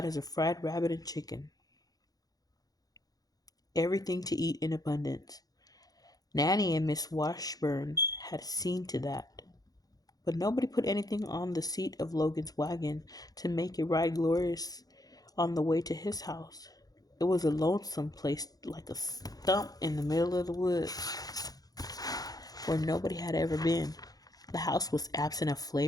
of fried rabbit and chicken. Everything to eat in abundance. Nanny and Miss Washburn had seen to that. But nobody put anything on the seat of Logan's wagon to make it ride glorious on the way to his house. It was a lonesome place like a stump in the middle of the woods where nobody had ever been. The house was absent of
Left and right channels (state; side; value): late; right; 0.18 ms